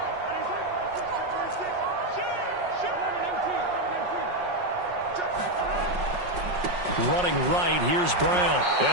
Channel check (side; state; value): left; late; 5.5 ms